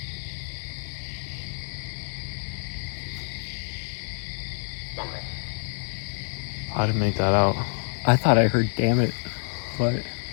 I didn't make that out. I thought I heard "damn it," but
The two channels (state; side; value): silent; right; digital silence